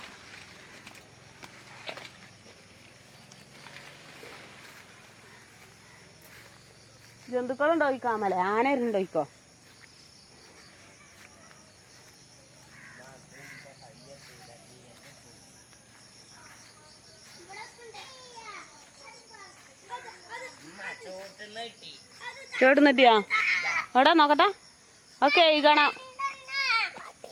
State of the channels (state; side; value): identical; both; correlation 1.00